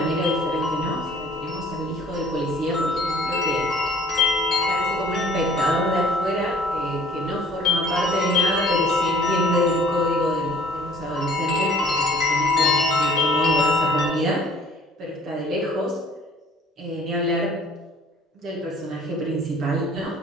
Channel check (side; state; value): both; normal; correlation 0.53